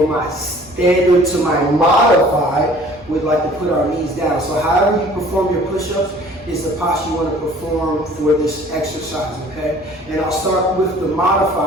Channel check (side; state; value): both; normal; correlation 0.51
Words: my standard to my modified, we'd like to put our knees down. So however you perform your push-ups is the posture you want to perform for this exercise, okay? And I'll start with the